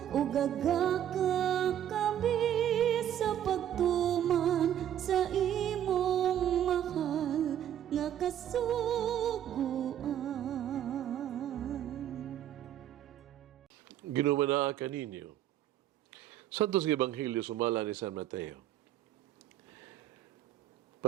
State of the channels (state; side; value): quieter; left; 10.8 dB